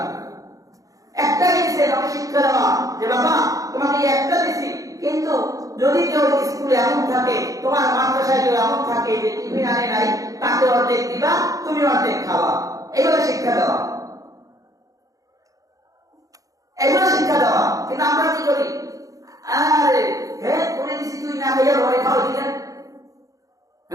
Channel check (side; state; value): left; late; 0.17 ms